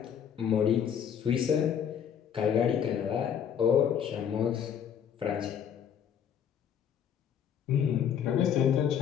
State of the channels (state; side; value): quieter; right; 8.4 dB